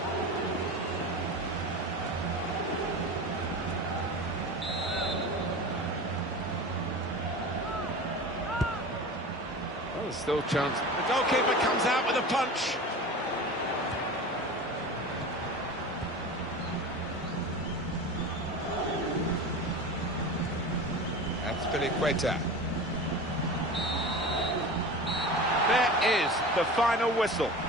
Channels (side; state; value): both; normal; correlation 0.32